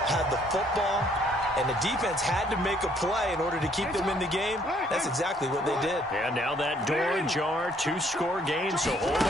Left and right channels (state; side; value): normal; both; correlation 0.64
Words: had the football, and the defense had to make a play in order to keep them in the game. That's exactly what they did. And now that door ajar, 2-score game, so hold